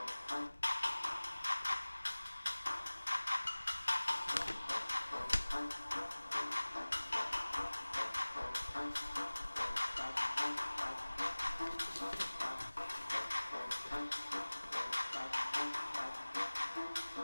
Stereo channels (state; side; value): inverted; both; correlation -1.00